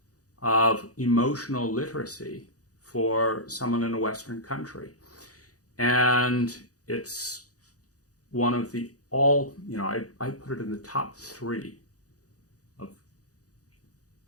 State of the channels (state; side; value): late; right; 0.67 ms